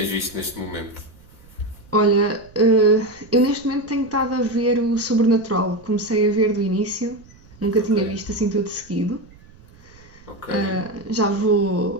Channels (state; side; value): noise; right; rumble, 25 dB below the sound